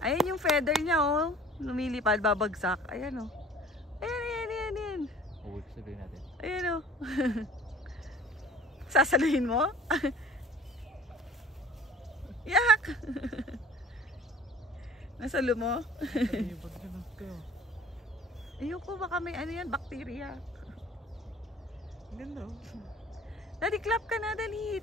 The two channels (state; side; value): normal; both; correlation 0.47